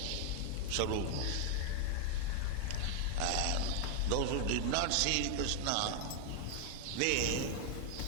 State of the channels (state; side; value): different; both; correlation 0.00